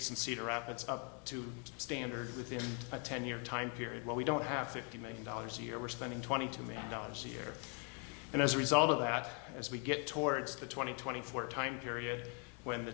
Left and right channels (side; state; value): right; quieter; 36.0 dB